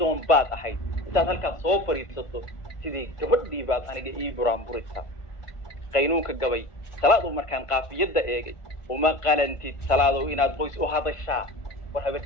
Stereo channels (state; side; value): late; right; 1.5 ms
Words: baad ahayd intaad halkaas soo fariisato sidii gabadhii baad aniga ii buraanburaysaa qaynuunka gabay salaadu markaan qaafiyadda eegay uma qalantid salaadow inaad qoys u hadashaa war habar